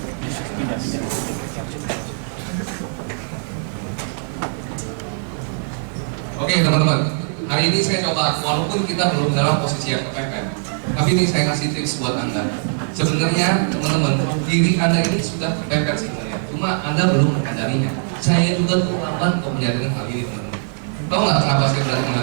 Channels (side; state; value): left; silent; digital silence